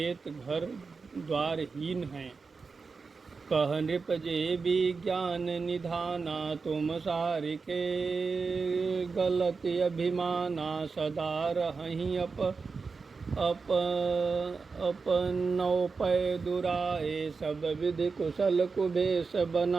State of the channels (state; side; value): quieter; left; 4.7 dB